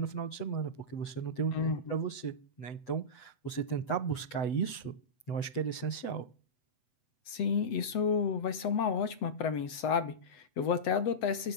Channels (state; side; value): late; right; 8.0 ms